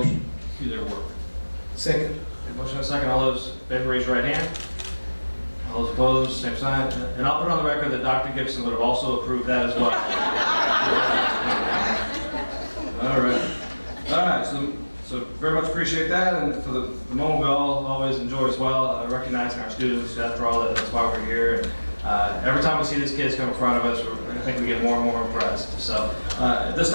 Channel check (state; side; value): inverted; both; correlation -1.00